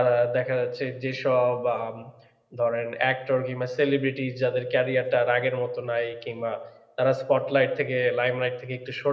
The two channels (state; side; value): identical; both; correlation 1.00